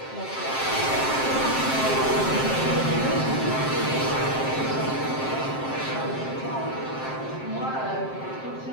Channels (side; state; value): right; late; 7.6 ms